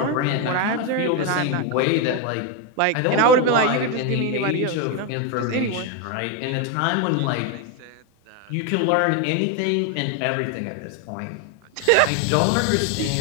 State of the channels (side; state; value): both; different; correlation 0.02